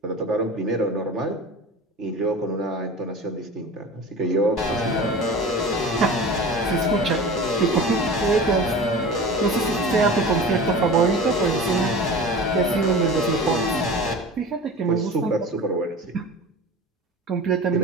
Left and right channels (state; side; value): normal; both; correlation 0.35